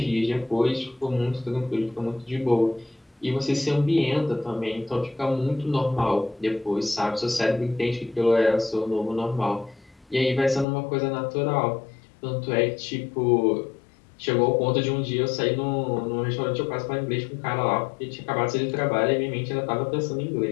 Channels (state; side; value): drops out; right; at 10.7 s